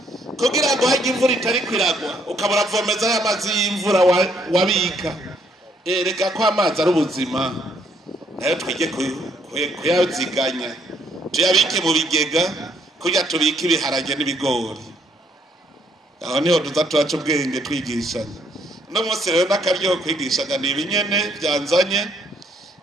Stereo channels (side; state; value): both; normal; correlation 0.69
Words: kugira ngo hajya imvura itari kwiragwa ukabura vomeza y'amazi y'imvura wabika reka ko amazi ari ubuzima nayo twige kuyaziganya tuyabike mu bigega kugira tubike ibiharage n'ibigori aho niho tuza turaca ubwenge twigishanya no munsi rero n'akaryo kwigishanya ni ibinyene byanzanye